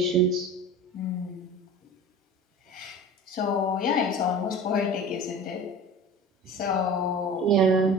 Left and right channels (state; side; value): normal; both; correlation 0.36